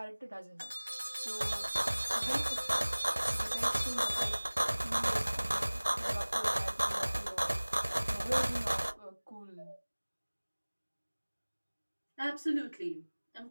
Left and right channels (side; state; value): both; inverted; correlation -1.00